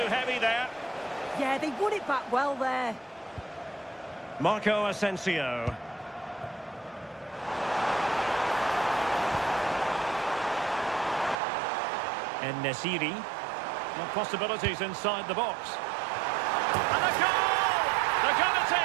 heavy there. Yeah, they won it back well there. Marco Asensio. En-Nesyri. Well, possibilities inside the box. And a goal! They're going to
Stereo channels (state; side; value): drops out; left; at 11.4 s